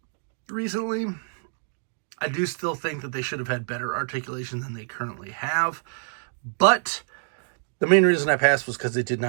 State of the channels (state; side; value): silent; left; 59 dB below the other